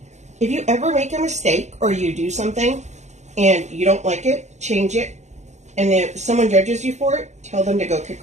If you ever make a mistake or you do something and you don't like it, change it. And if someone judges you for it, tell them to go kick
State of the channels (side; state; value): left; late; 0.33 ms